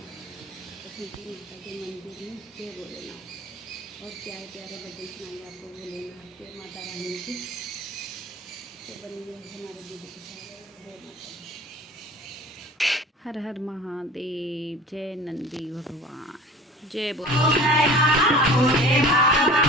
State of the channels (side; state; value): both; normal; correlation 0.42